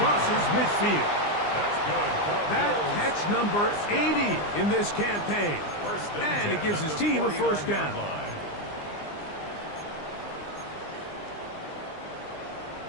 midfield. That's good. That catch number 80 in this campaign. And it gives his team a first down.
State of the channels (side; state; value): right; late; 20 ms